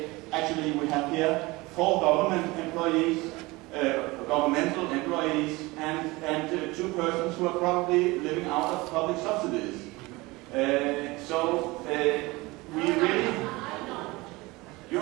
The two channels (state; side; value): quieter; left; 22.3 dB